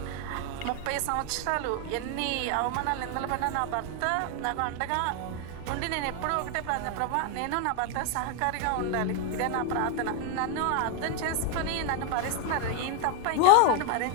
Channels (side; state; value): both; different; correlation 0.01